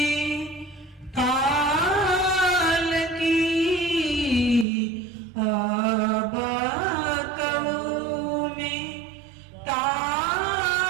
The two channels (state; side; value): drops out; left; at 4.7 s